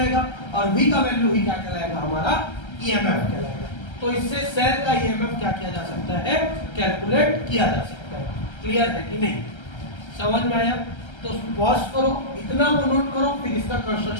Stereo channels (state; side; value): late; right; 1.3 ms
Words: और V का वैल्यू ही क्या कहलाएगा, हमारा EMF कहलाएगा। तो इससे सेल का EMF क्या किया जा सकता है, कैलकुलेट किया जा सकता है। क्लियर है कि नहीं, समझ में आया। तो पॉज करो, इतना को नोट करो, फिर इसका